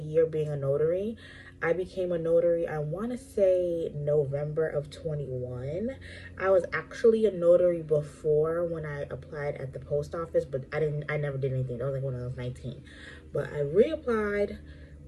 being a notary. I became a notary, I want to say November of 21. I was actually a notary before when I applied at the post office, but I never did anything. That was like when I was 19. But I reapplied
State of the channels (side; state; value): both; identical; correlation 1.00